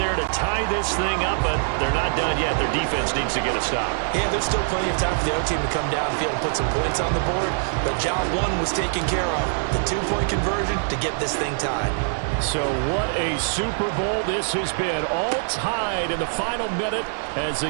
to tie this thing up, but they're not done yet. Their defense needs to get a stop. Yeah, there's still plenty of time for the other team to come downfield and put some points on the board, but job 1 was taken care of. The 2-point conversion to get this thing tied. So what a Super Bowl this has been. All tied in the final minute as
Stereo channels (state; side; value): silent; left; digital silence